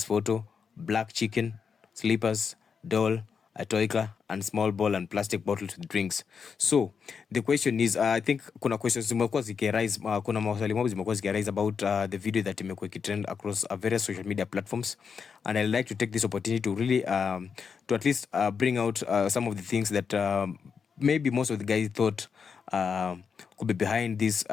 photo, black chicken, slippers, doll, a toy car, and small ball and plastic bottles with drinks. So the question is, I think kuna questions zimekuwa zikiarise, kuna maswali mob zimekuwa zikiarise about the video that imekuwa ikitrend across various social media platforms, and I'd like to take this opportunity to really to at least bring out some of the things that maybe most of the guys thought could be behind this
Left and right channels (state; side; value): quieter; right; 6.2 dB